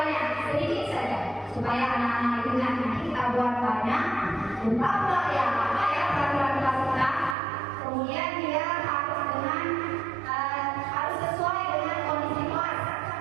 sedikit saja supaya anak-anak itu nanti kita buat banyak. Lupa pula ya apa ya peraturan kelas kita. Kemudian dia harus dengan harus sesuai dengan kondisi kelas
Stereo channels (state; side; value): drops out; left; at 7.4 s